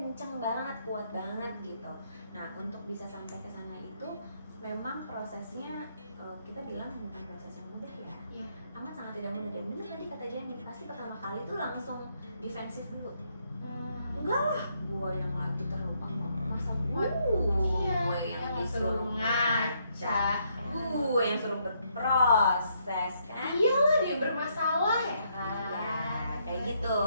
banget, kuat banget gitu. Nah untuk bisa sampai ke sana itu memang prosesnya kita bilang bukan proses yang mudah ya. Amat sangat tidak mudah. Dan benar tadi kata Jenny, pasti pertama kali itu langsung defensif dulu. Enggak lah, gue yang lagi terlupa, masa gue yang disuruh ngaca ngaca, gue yang suruh berproses kan. Iyalah dia bermasalah ya kan. Ya, kayak gitu.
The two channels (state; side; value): inverted; both; correlation -0.74